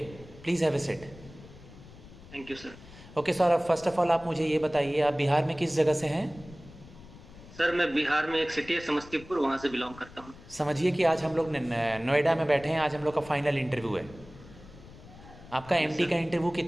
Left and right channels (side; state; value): left; noise; rumble, 19 dB below the sound